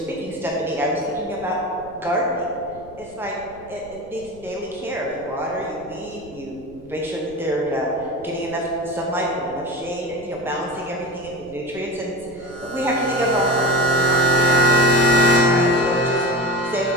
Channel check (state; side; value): noise; right; rumble, 22 dB below the sound